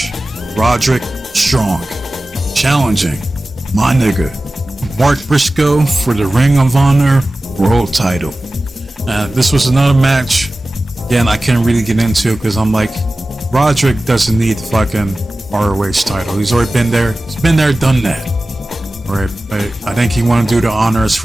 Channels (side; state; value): both; normal; correlation 0.96